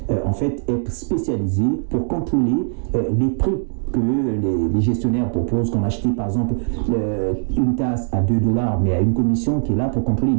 en fait être spécialisée pour contrôler les prix que les gestionnaires proposent, qu'on achète par exemple une tasse à $2, mais à une commission qui est là pour contrôler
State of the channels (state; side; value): silent; left; digital silence